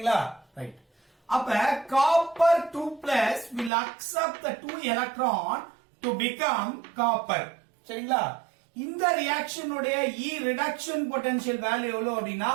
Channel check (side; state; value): left; drops out; at 3.7 s